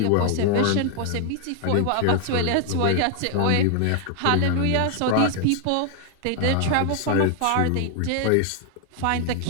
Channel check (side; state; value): both; different; correlation 0.00